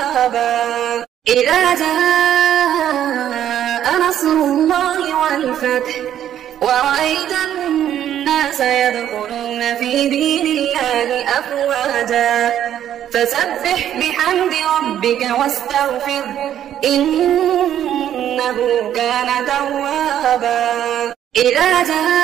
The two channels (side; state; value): left; quieter; 10.7 dB